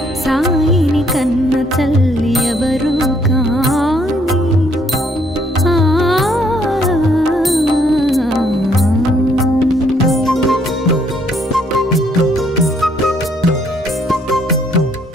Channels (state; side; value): normal; both; correlation 0.68